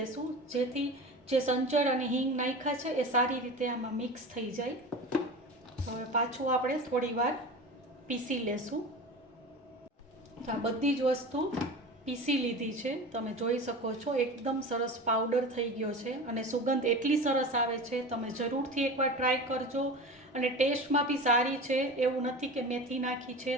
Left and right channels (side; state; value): both; normal; correlation 0.31